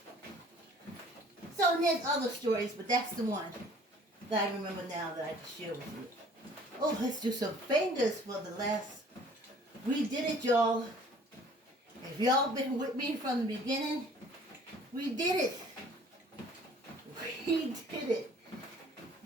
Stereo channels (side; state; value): both; normal; correlation 0.53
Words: So there's other stories, but that's the one that I remember now that I can share with you. Oh, let's do some fingers for the last. We did it, y'all. If y'all been with me from the beginning, we did it. We did it.